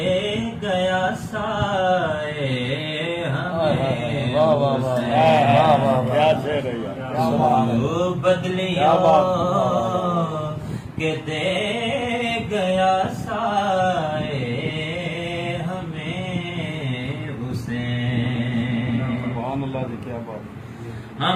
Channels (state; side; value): identical; both; correlation 1.00